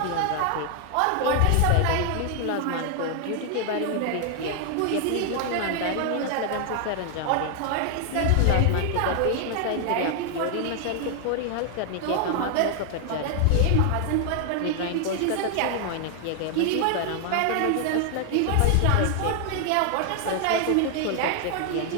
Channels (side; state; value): both; different; correlation 0.00